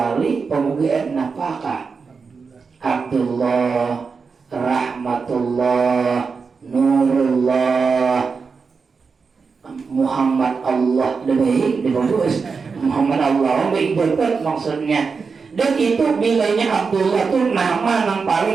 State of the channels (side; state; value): left; quieter; 5.1 dB